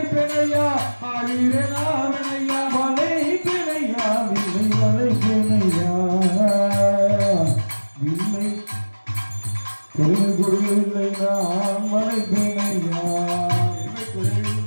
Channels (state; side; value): inverted; both; correlation -1.00